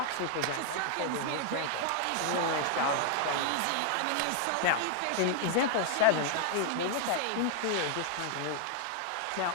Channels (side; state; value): both; different; correlation -0.01